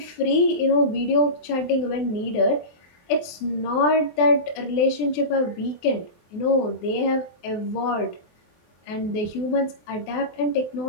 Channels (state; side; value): late; right; 24 ms